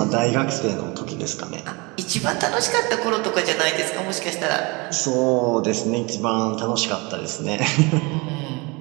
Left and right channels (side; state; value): left; quieter; 27.0 dB